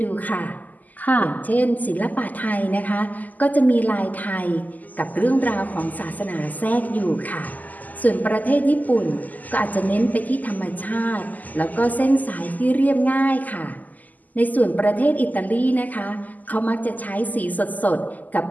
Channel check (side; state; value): right; late; 0.081 ms